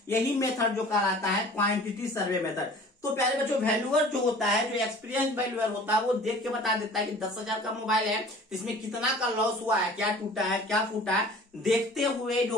यही मेथड जो कहलाता है क्वांटिटी सर्वे मेथड। तो प्यारे बच्चों वैल्यूअर जो होता है, जो एक्सपीरियंस वैल्यूअर होता है, वो देख के बता देता है कि 10,000 का मोबाइल है, इसमें कितना का लॉस हुआ है, क्या टूटा है, क्या फूटा है, देखते हुए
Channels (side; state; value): both; normal; correlation 0.46